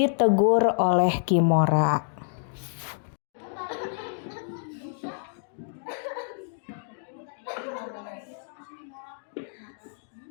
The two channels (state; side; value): silent; right; digital silence